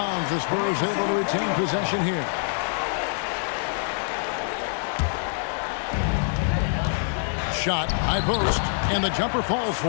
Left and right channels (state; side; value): silent; right; digital silence